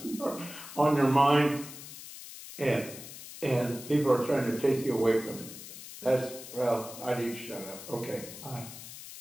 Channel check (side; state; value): left; noise; hiss, 13 dB below the sound